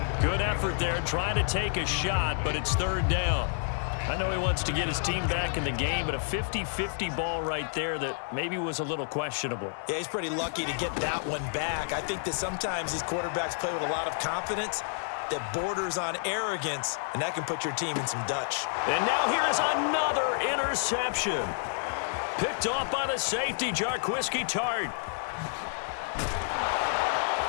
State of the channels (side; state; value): right; silent; 58 dB below the other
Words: Good effort there trying to take a shot, but it's third down. I know he wants to get his team back in the game, but a 50-50 ball right there that maybe was a little questionable. Yeah, he's pretty lucky to get that one back. I think that sometimes these quarterbacks play with a lot of confidence that borders on arrogance, and that can put your team in some Dutch. And now here is another interception. Picked off by the safety, Jarquiski Tart.